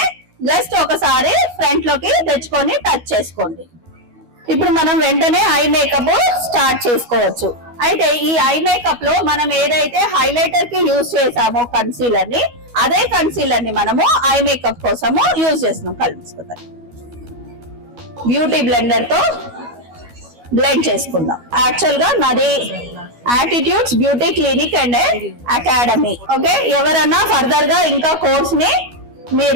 జస్ట్ ఒకసారి ఫ్రంట్ లోకి తెచ్చుకొని టచ్ చేసుకోండి. ఇప్పుడు మనం వెంటనే ఐ మేకప్ స్టార్ట్ చేసుకోవచ్చు. అయితే ఈ ఐ మేకప్ లో మనం ఏదైతే హైలైటర్ కి యూజ్ చేసామో కన్సీలర్ ని, అదే కన్సీలర్ ని మనము ఐ మేకప్ కోసము యూజ్ చేస్తున్నాం. కలుపుకుందాం. బ్యూటీ బ్లెండర్ తో బ్లెండ్ చేసుకుందాం. యాక్చువల్ గా నాది attitudes beauty clinic and academy. Okay, ఎవరన్నా ఫర్దర్ గా ఇంకా కోర్స్ ని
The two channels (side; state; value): left; late; 12 ms